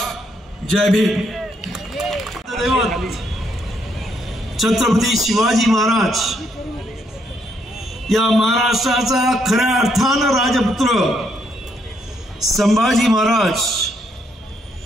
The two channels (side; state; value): both; normal; correlation 0.74